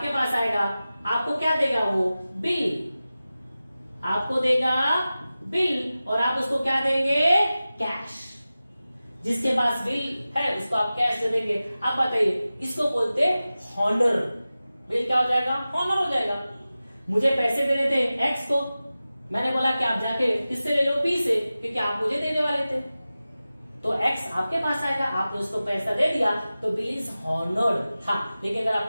पास आएगा, आपको क्या देगा, वो बिल आपको देगा बिल, और आप उसको क्या देंगे, कैश। जिसके पास बिल है उसको आप कैश दे देंगे। आप बताइए, इसको बोलते हॉनर। बिल क्या हो जाएगा, हॉनर हो जाएगा। मुझे पैसे देने थे एक्स को, मैंने बोला कि आप जाके किससे ले लो, बी से, क्योंकि आप मुझे देने वाले थे, तो एक्स आपके पास आएगा, आपने उसको पैसा दे दिया, तो बिल इज हॉनर्ड था। लेकिन अगर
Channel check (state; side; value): inverted; both; correlation -0.96